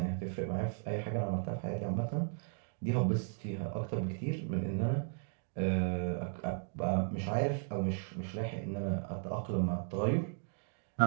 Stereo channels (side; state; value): left; silent; 54 dB below the other